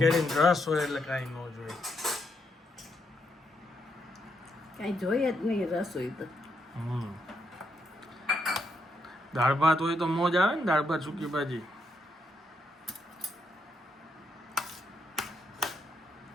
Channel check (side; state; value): both; normal; correlation 0.79